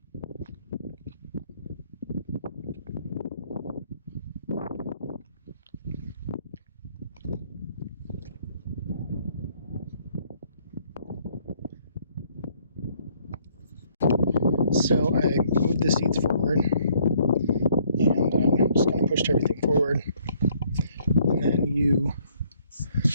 So I moved the seats forward, and just kind of pushed everything forward. And then you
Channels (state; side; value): inverted; both; correlation -0.65